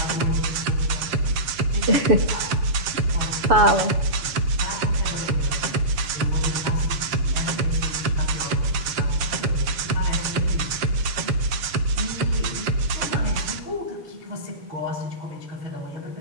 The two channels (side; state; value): left; late; 7.4 ms